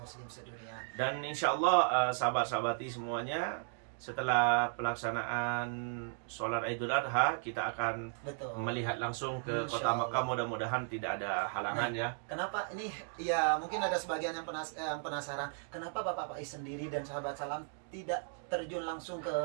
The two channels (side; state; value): left; silent; digital silence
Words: sedunia. Dan insya Allah sahabat-sahabati semuanya, setelah pelaksanaan sholat Idul Adha, kita akan melihat langsung ke kota Makkah. Mudah-mudahan tidak ada halangan ya. Kenapa ini? Ya mungkin ada sebagian yang penasaran, kenapa Bapak Faiz sendiri dan sahabat salam tidak terjun langsung ke